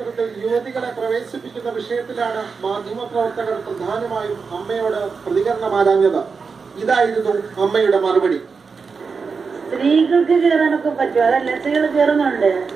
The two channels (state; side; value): quieter; left; 5.1 dB